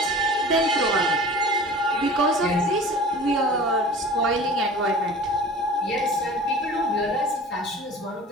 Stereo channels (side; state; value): both; normal; correlation 0.41